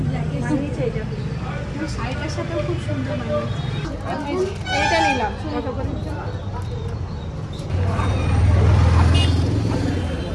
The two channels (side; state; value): both; identical; correlation 1.00